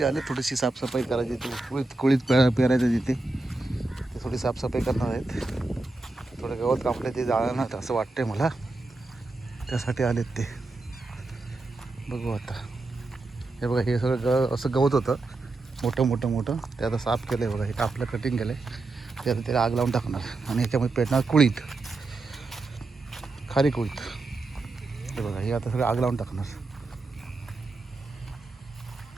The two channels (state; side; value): quieter; left; 3.2 dB